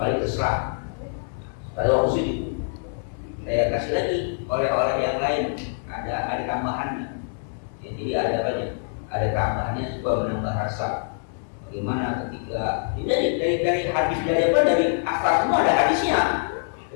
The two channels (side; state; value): right; silent; digital silence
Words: kali terserah. Pada waktu sujud saya kasih lagi oleh yang lain. Ada tambahannya. Ya, jadi ada banyak, ada tambahannya supaya menambah rasa. Bagaimana ketika dari hadis dari asal semua ada hadisnya.